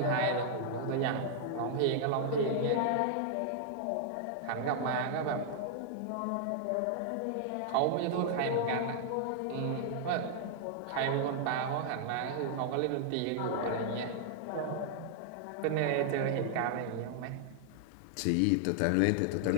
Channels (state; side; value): different; both; correlation -0.01